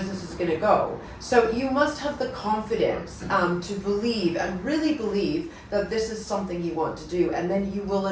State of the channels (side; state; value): both; identical; correlation 1.00